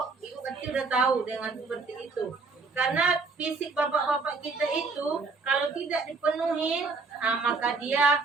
ibu kecil udah tahu dengan seperti itu. Karena fisik bapak-bapak kita itu kalau tidak dipenuhi, maka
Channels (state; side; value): quieter; left; 4.1 dB